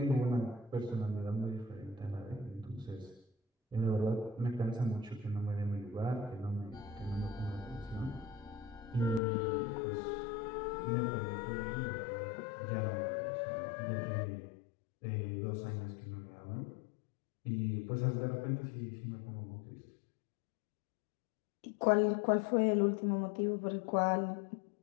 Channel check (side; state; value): right; drops out; at 9.2 s